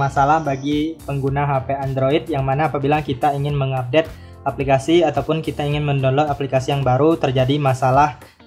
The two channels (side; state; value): both; identical; correlation 1.00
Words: bagi pengguna HP Android yang mana apabila kita ingin mengupdate aplikasi ataupun kita ingin mendownload aplikasi yang baru, terjadi masalah